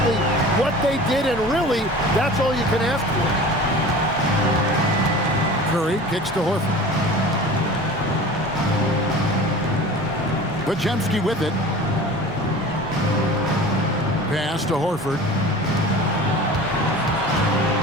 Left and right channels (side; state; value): both; normal; correlation 0.39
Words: what they did, and really, that's all you can ask for. Curry kicks to Horford. Podziemski with it. Pass to Horford.